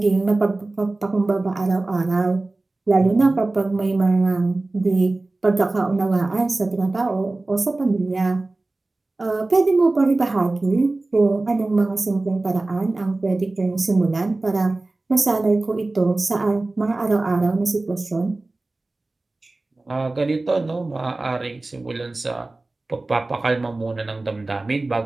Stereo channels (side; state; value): left; quieter; 3.1 dB